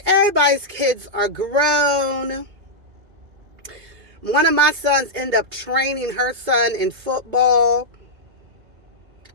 everybody's kids are grown. One of my sons ended up training her son in football.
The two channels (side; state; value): left; late; 2.3 ms